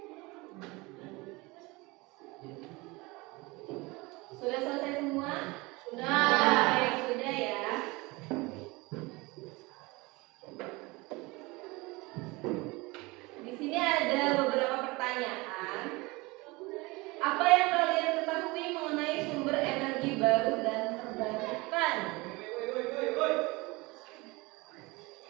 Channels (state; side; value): quieter; left; 23.8 dB